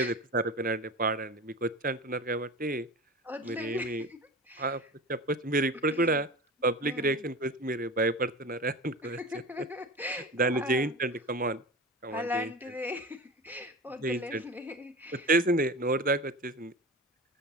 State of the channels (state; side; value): normal; both; correlation 0.31